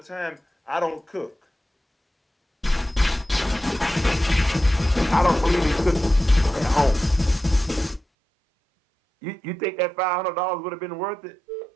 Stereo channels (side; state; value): left; drops out; at 8.0 s